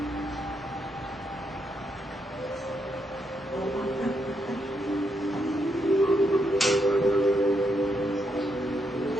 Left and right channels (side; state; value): both; normal; correlation 0.79